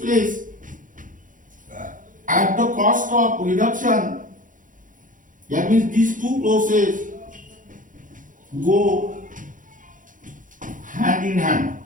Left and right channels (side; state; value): left; late; 0.38 ms